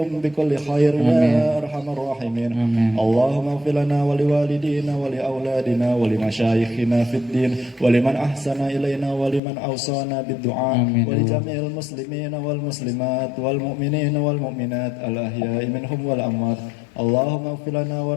بكل خير يا أرحم الراحمين. اللهم اغفر لنا ولوالدينا ولأولادنا ولمشايخنا في الدين ولمن أحسن إلينا ولمن أوصانا بالدعاء ولجميع المسلمين والمسلمات والمؤمنين والمؤمنات الأحياء منهم والأموات. اللهم اغفر لنا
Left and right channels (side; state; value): right; drops out; at 9.4 s